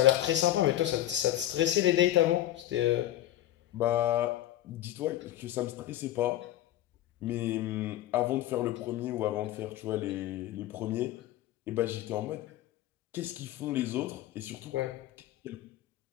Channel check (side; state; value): right; quieter; 13.5 dB